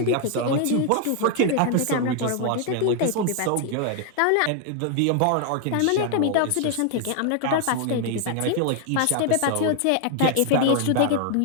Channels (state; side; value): different; both; correlation 0.00